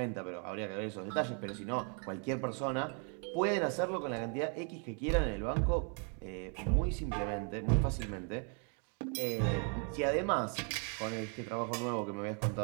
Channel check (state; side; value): quieter; left; 39.3 dB